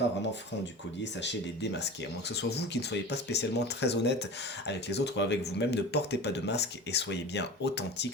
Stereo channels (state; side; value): normal; both; correlation 0.33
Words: vraiment francs du collier, sachez les démasquer. À moins que ce soit vous qui ne soyez pas spécialement très honnête avec les autres ou avec vous-même, ne portez pas de masque et soyez bien